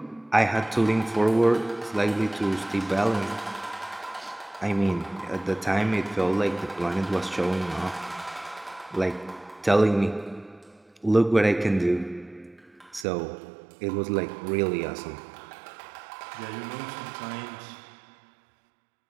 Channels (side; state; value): left; drops out; at 13.1 s